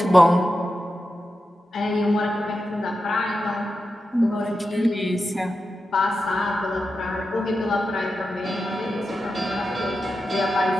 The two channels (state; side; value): normal; both; correlation 0.90